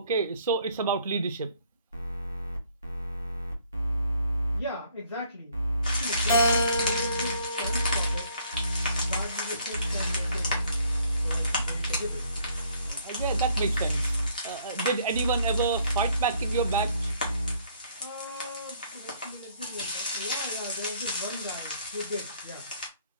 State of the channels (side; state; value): both; inverted; correlation -0.64